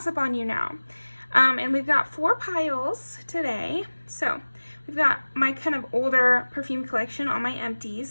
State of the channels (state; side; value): inverted; both; correlation -1.00